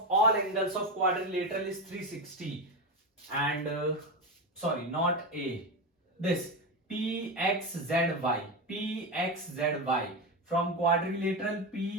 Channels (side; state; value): both; normal; correlation 0.16